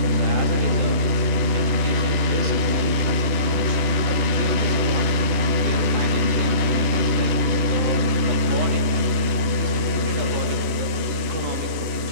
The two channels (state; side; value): late; left; 10 ms